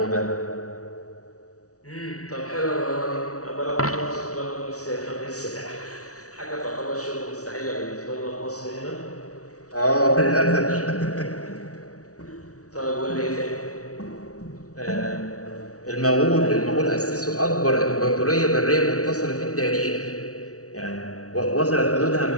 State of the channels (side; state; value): right; late; 0.66 ms